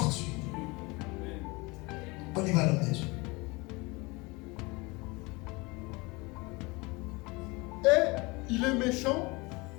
On y va, l'homme de Dieu. Et il est méchant.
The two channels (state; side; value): quieter; right; 25.2 dB